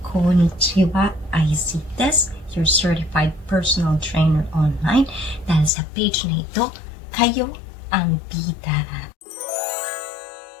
konnichiwa, Aisy Des, your certified personal trainer online. Dahil sa page na ito, kayo ang bida.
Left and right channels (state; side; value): drops out; right; at 5.7 s